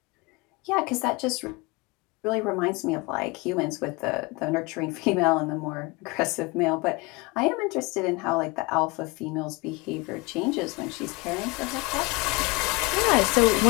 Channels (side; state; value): right; quieter; 25.6 dB